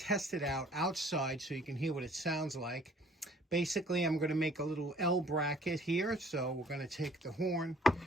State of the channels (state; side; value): normal; both; correlation 0.56